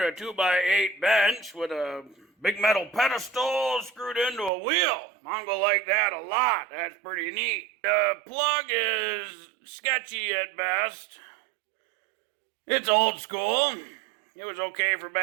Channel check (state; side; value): drops out; left; at 4.5 s